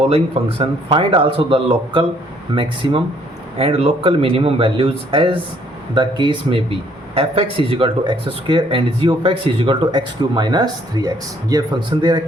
function, find also the local maximum and local minimum values as the case में B F x is equal to x square and G of x is equal to x cube minus 3x। ये function दे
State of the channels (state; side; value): normal; both; correlation 0.64